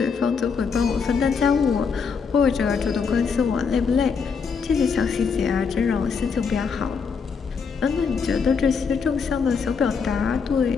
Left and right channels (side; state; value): right; quieter; 5.7 dB